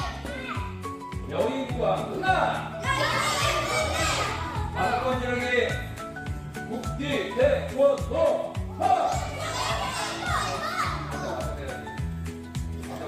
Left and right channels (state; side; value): identical; both; correlation 1.00